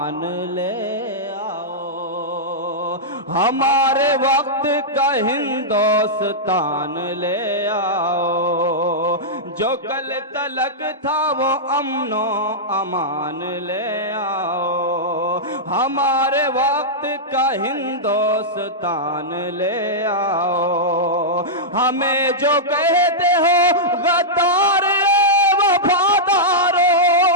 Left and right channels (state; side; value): normal; both; correlation -0.11